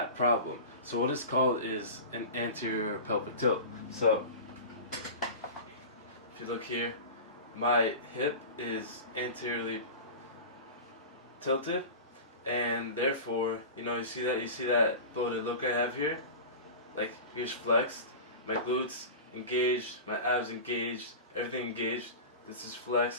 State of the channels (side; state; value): both; inverted; correlation -0.31